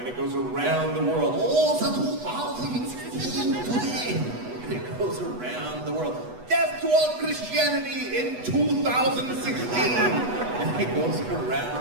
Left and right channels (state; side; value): late; left; 8.1 ms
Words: it goes around the world. Oh, it's 2016 today. And it goes around the world. Death to all Christianity in 2016. And it goes